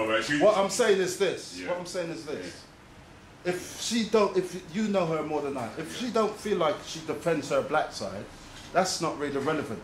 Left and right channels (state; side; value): identical; both; correlation 1.00